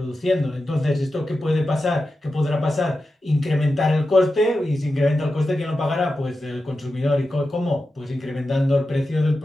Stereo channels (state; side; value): normal; both; correlation 0.91